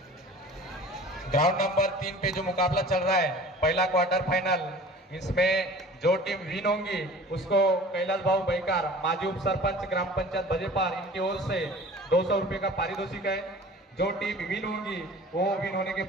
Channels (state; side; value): normal; both; correlation 0.43